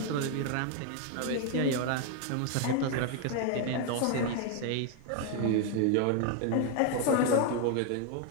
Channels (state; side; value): different; both; correlation 0.01